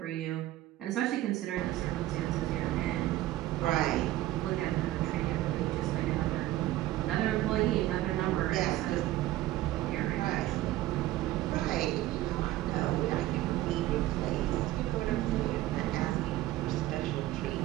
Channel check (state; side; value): quieter; left; 15.4 dB